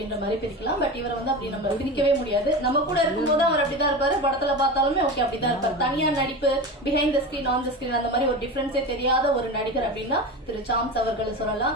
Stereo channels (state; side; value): normal; both; correlation 0.26